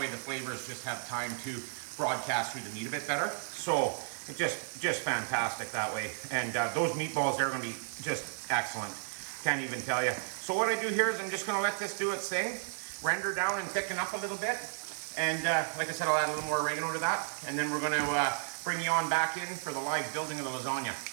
the flavors just have time to broadcast through the meat a bit better. So it's just fantastic that way. And those meatballs, they're gonna be just excellent. Can't even tell you. So what I do here is I'm just gonna let this do its thing, render down and thicken up a little bit. And like I said, I'll add a little more oregano to that. And then we're gonna bring you on back in for the live building of the lasagna.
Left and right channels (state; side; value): silent; left; digital silence